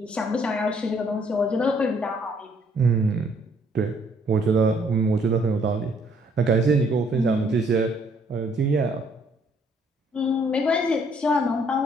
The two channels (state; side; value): normal; both; correlation 0.65